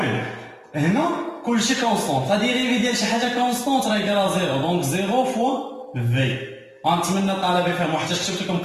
هنا كلشي كونستون لا ديريفي ديال شي حاجه كونستون راه يقرا زيرو. دونك زيرو فوا في. غنتمنى الطلبه يفهموا حتى كتبت لكم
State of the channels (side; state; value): both; identical; correlation 1.00